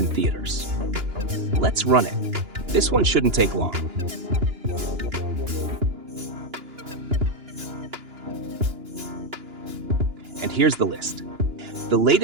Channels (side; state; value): left; late; 2.9 ms